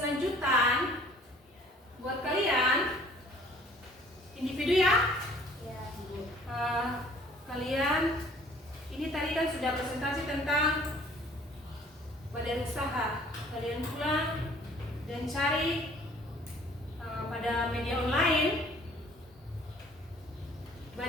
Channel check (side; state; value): both; normal; correlation 0.54